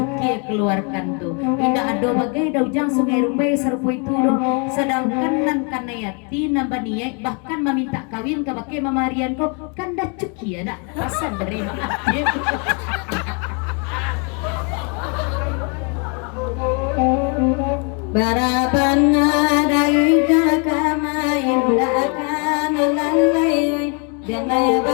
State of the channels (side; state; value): right; quieter; 36.4 dB